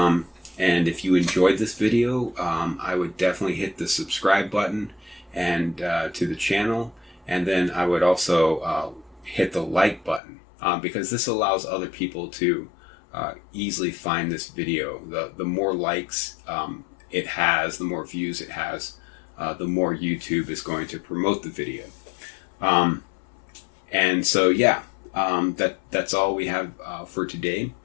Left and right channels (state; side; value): drops out; right; at 10.2 s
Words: if you enjoyed this video, I would definitely hit the subscribe button and to the channel, and then I would also hit the like button because this allows other people to easily find this video. The more likes it has, the more views it has, the more YouTube is going to promote the video. And so yeah, that's all we have for today.